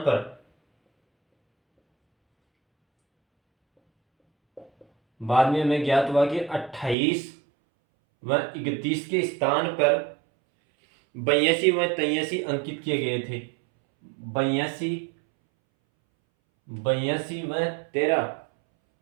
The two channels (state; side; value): drops out; left; at 7.0 s